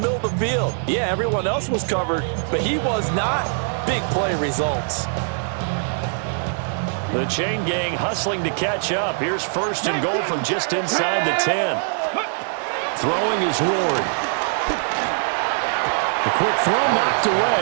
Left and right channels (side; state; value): left; silent; digital silence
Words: of the field. Yeah, everyone else was covered, but he was not. Big play results. The chain gang hustling to catch up. Here's 1st and goal from just inside the 10. Throwing is Ward. The quick throw knocked away.